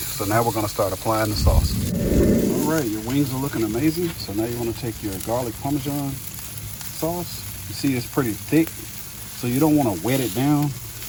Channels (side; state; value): both; identical; correlation 1.00